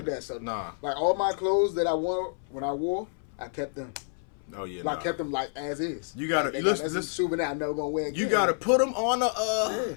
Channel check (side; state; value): right; silent; 59 dB below the other